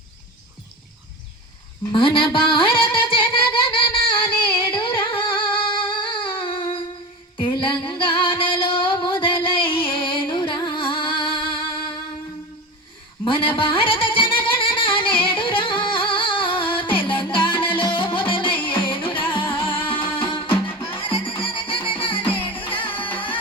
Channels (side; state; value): both; normal; correlation 0.28